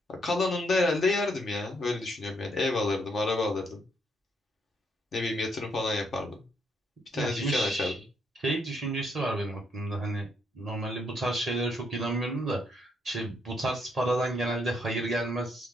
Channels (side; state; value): both; normal; correlation 0.74